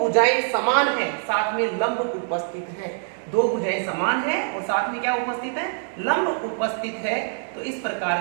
समान है साथ में लंब उपस्थित है। दो भुजाएं समान है और साथ में क्या उपस्थित है? लंब उपस्थित है। तो इस प्रकार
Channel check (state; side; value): silent; left; 62 dB below the other